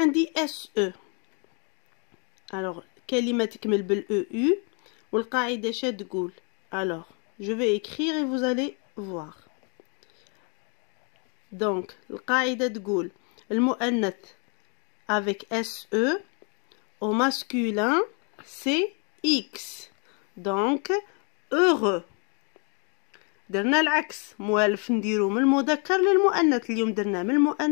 SE. Alors, كلمة تكمل بالEU والقاعدة شا تقول. Alors, je vais écrire et vous allez voir. Donc, القاعدة تقول المؤنث avec SE au masculin c'est X. Donc, heureux. درنا العكس موالف نديرو من المذكر للمؤنث اليوم درنا من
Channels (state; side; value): quieter; right; 37.3 dB